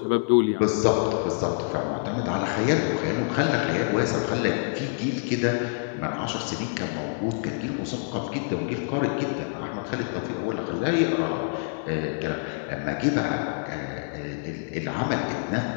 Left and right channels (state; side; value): silent; right; 61 dB below the other